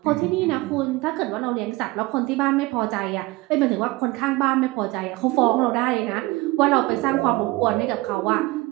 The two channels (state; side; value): quieter; left; 21.0 dB